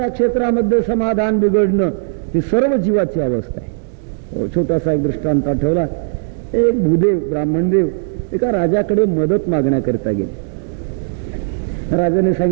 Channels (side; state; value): left; silent; digital silence